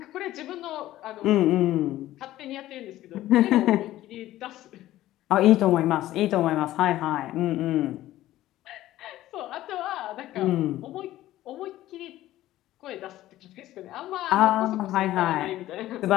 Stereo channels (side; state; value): right; quieter; 14.8 dB